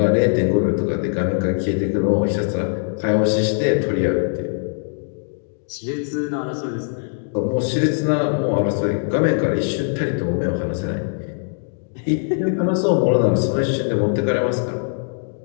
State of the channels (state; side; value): silent; right; digital silence